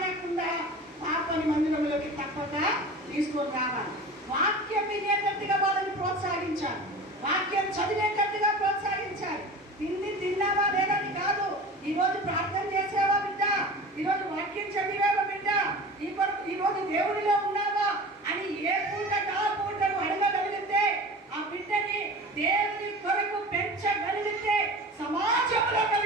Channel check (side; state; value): both; normal; correlation 0.35